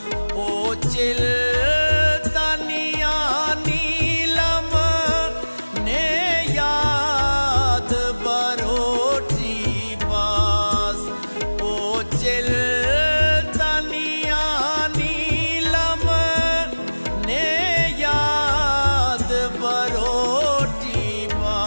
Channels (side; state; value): both; inverted; correlation -1.00